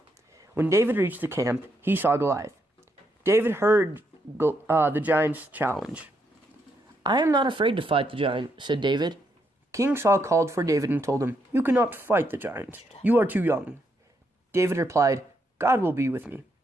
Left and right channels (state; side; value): normal; both; correlation 0.78